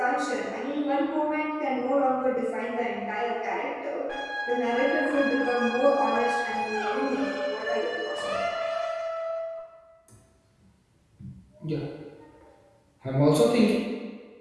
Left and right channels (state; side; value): identical; both; correlation 1.00